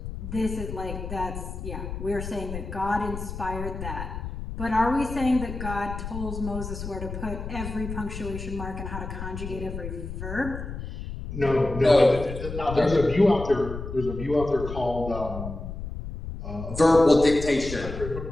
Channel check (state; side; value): noise; left; rumble, 8 dB below the sound